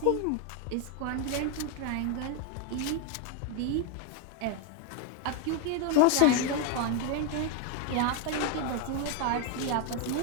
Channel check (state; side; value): different; both; correlation 0.01